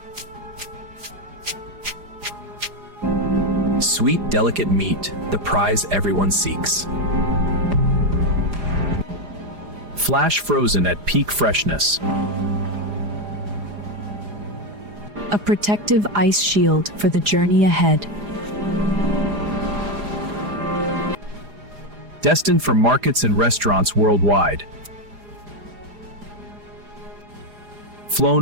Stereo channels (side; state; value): left; late; 4.9 ms